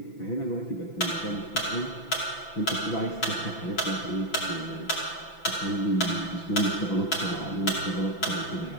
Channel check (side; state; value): right; late; 5.9 ms